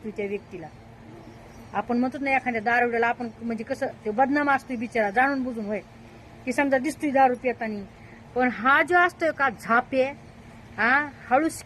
त्या व्यक्तीला. आपण म्हणतो ना एखाद्या दारुड्याला आपण म्हणजे कसं ते बदनाम असतोय बिचारा जाणून बुजून, होय की समजा दिसतोय दारू पितानी, पण हा जो असतोय का झापे, हा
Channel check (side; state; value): both; identical; correlation 1.00